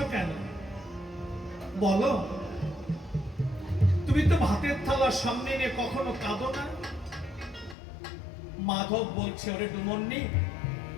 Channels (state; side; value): drops out; right; at 7.8 s